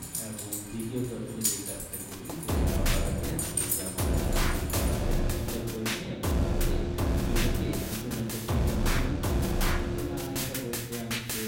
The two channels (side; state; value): both; identical; correlation 1.00